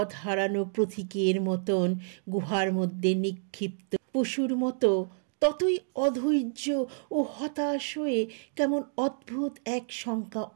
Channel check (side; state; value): left; silent; digital silence